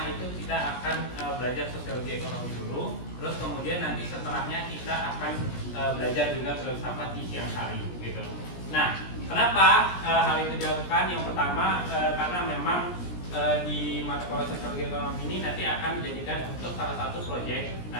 itu kita akan belajar sosiologi ekonomi dulu, terus kemudian nanti setelahnya kita akan belajar juga filsafat di siang hari gitu. Nah, kenapa hal itu dilakukan? Yang pertama karena memang di mata kuliah sosiologi ekonomi ini nanti akan dijadikan untuk salah satu proyek.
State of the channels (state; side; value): late; right; 17 ms